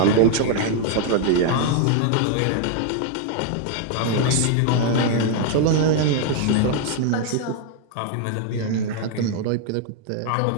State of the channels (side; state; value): both; different; correlation 0.00